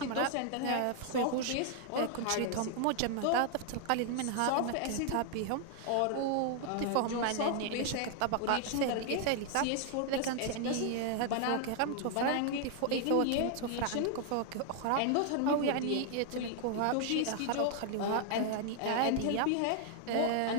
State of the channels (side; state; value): both; different; correlation 0.00